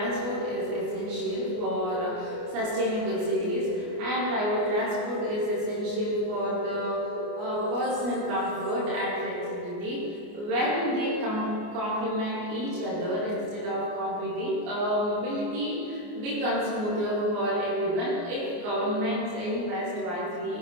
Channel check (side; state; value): left; late; 29 ms